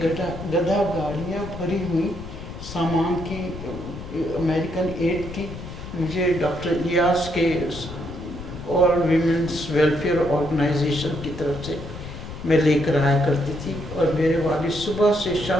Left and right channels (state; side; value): noise; left; rumble, 11 dB below the sound